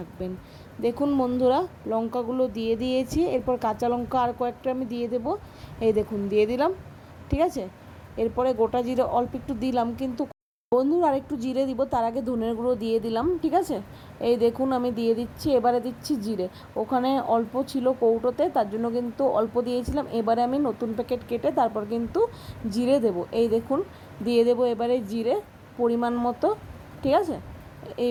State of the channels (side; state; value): both; identical; correlation 1.00